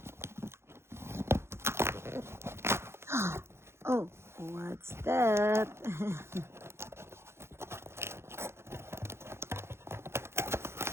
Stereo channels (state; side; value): late; left; 0.12 ms